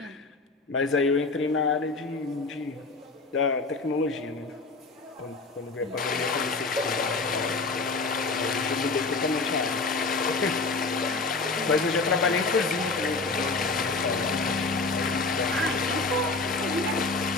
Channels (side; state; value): right; quieter; 3.7 dB